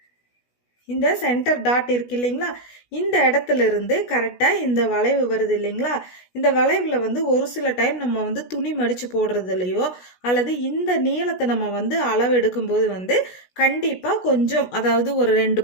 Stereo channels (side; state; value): right; late; 16 ms